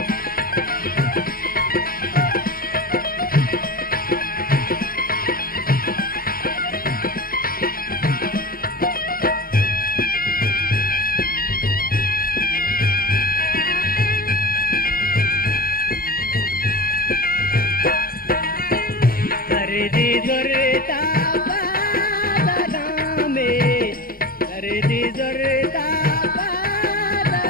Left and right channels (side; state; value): right; late; 0.42 ms